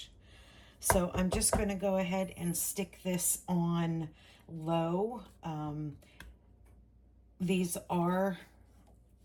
So I'm just going to go ahead and stick this on low. These are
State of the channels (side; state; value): both; identical; correlation 1.00